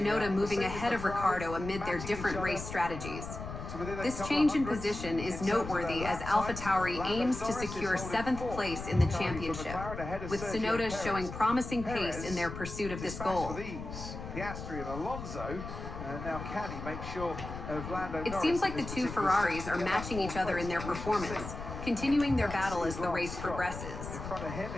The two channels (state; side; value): noise; left; rumble, 9 dB below the sound